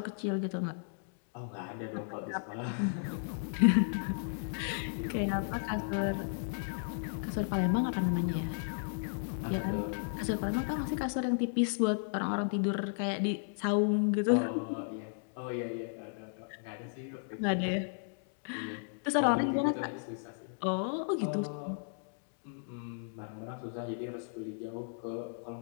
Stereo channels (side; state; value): right; silent; digital silence